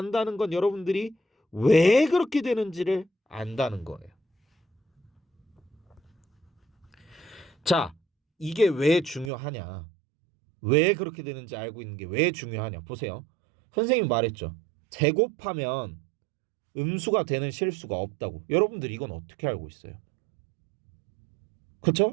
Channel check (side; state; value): left; drops out; at 9.3 s